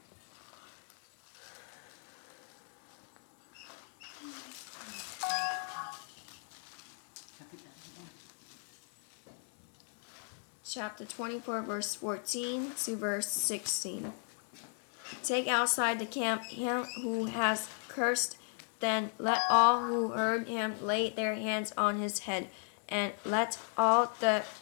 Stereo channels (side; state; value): right; silent; 54 dB below the other